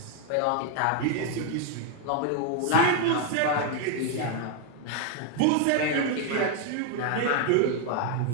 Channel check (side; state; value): both; different; correlation 0.01